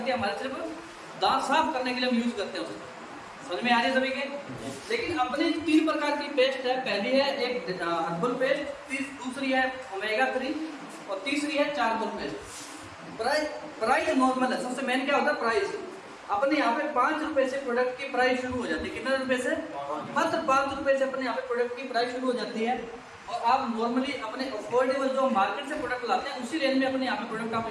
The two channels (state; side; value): identical; both; correlation 1.00